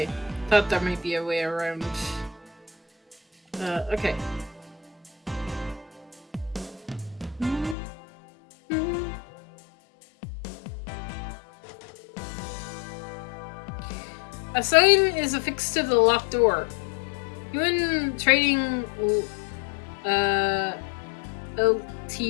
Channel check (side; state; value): right; drops out; at 7.8 s